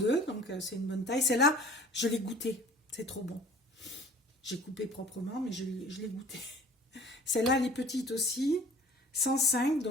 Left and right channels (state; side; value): normal; both; correlation 0.48